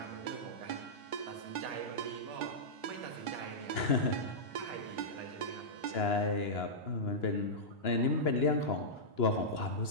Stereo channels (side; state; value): right; late; 2.9 ms